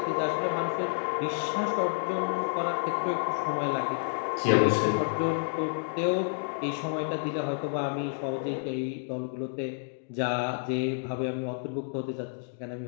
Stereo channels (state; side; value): silent; right; digital silence